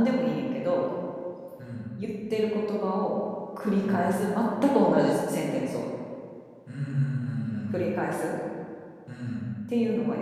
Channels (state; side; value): identical; both; correlation 1.00